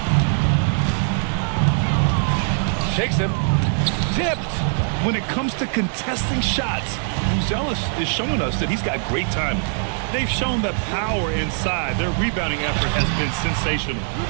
Shakes him. Tipped. When it comes to contesting shots, Buzelis is showing us that he's got great timing. They've shown that power inside. Their rebounding effort has been sensational.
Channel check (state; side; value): silent; left; 59 dB below the other